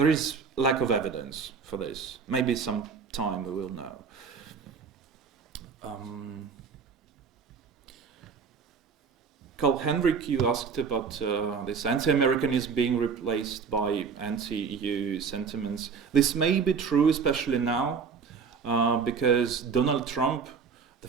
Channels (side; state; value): left; quieter; 5.8 dB